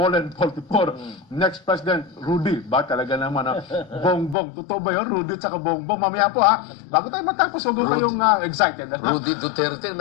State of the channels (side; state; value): right; drops out; at 4.4 s